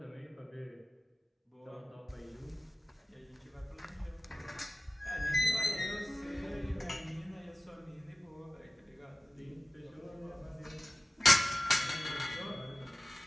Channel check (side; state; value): both; normal; correlation 0.96